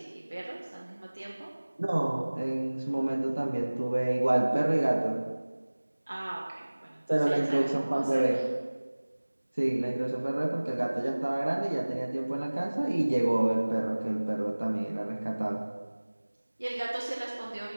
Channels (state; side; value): inverted; both; correlation -1.00